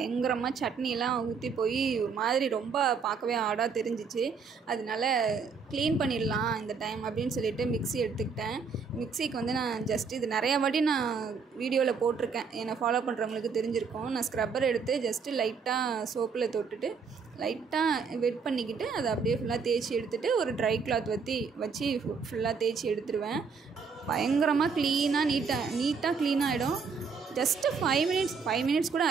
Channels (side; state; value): left; quieter; 5.4 dB